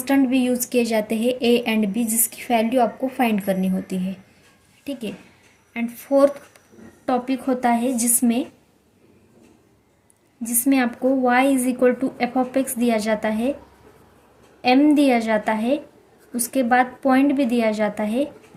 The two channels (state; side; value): identical; both; correlation 1.00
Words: भी यूज़ किए जाते हैं a एंड b, जिसकी वैल्यू आपको फाइंड करनी होती है। ठीक है, एंड फोर्थ टॉपिक होता है जिसमें आपको y is equal to F of x दिया जाता है, m दिया जाता है, उसके बाद पॉइंट भी दिया जाता है,